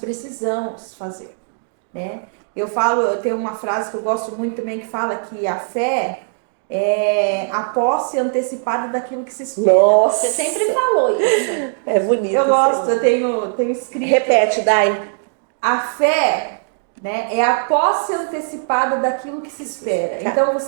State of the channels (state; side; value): silent; left; digital silence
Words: fazer. Né? Eu tenho uma frase que eu gosto muito também que fala que a fé é a posse antecipada daquilo que se espera. Nossa! Você sempre falou isso. É bonito. Eu gosto, eu tenho escrito. Repete, Dai. A fé, né, é a posse antecipada daquilo que se espera. Então